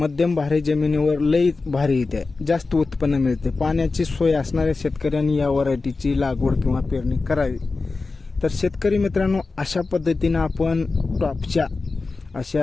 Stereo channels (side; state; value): right; quieter; 3.9 dB